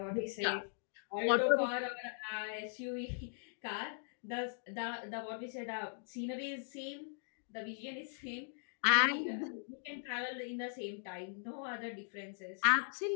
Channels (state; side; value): silent; right; digital silence